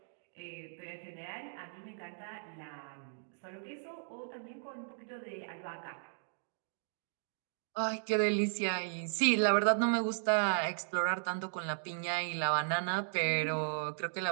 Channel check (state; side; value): silent; left; digital silence